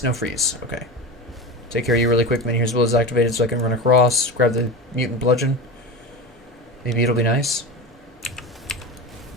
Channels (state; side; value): normal; both; correlation 0.26